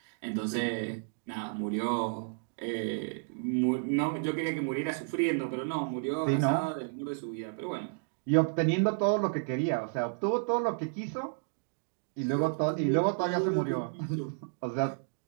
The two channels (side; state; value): left; silent; digital silence